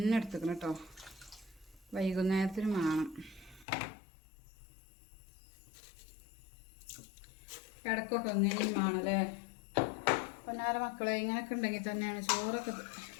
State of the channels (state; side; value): drops out; right; at 3.7 s